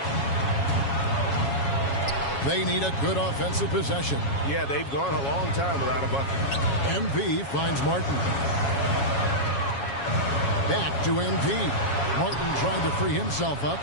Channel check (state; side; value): late; right; 7.2 ms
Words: They need a good offensive possession. Yeah, they've gone a long time without a bucket. MP finds Martin. Back to MP. Martin trying to free himself up.